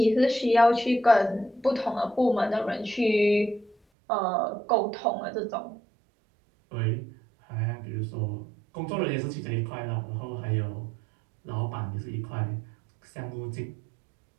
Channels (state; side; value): drops out; left; at 3.8 s